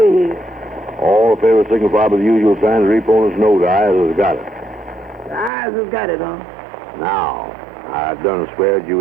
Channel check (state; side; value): drops out; left; at 5.5 s